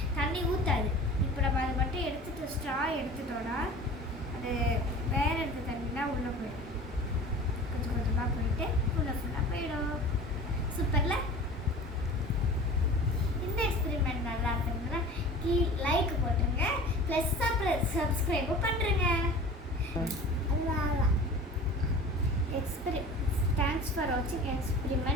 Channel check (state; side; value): normal; both; correlation 0.40